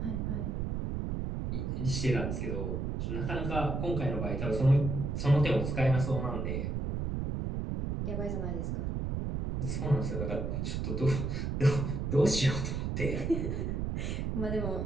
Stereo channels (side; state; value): right; noise; rumble, 1 dB below the sound